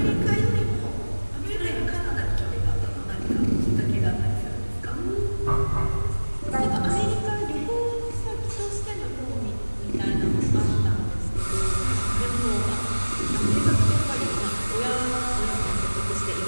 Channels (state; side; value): inverted; both; correlation -1.00